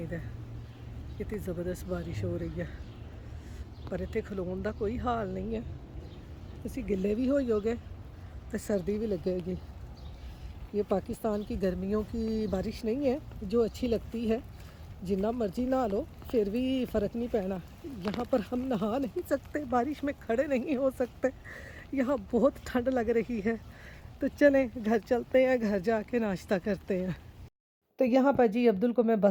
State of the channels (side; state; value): both; identical; correlation 1.00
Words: इधर कितनी ज़बरदस्त बारिश हो रही है, पर इतने खलोन का कोई हाल नहीं है। तुसी गिले भी होगे तो सर्दी भी लगेगी। ये पाकिस्तान की गर्मियों की बारिश नहीं है जो अच्छी लगती है, जितना मर्जी नहा लो फिर भी फ़र्क नहीं पैना। यहाँ पर हम नहा नहीं सकते, बारिश में खड़े नहीं हो सकते, यहाँ बहुत ठंड लग रही है। तो चलें घर चलते हैं, घर जाके नाश्ता करते हैं। तो यहाँ पर जी अब्दुल को मैं